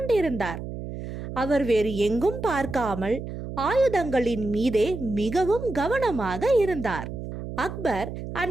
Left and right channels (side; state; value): right; noise; hum, 8 dB below the sound